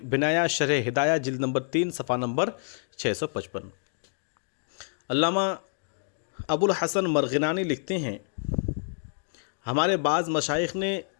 بنایا شرح ہدایہ جلد نمبر 3 صفحہ نمبر 655۔ علامہ ابو الحسن مرغنانی لکھتے ہیں ہمارے بعض مشائخ نے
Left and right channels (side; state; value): right; silent; digital silence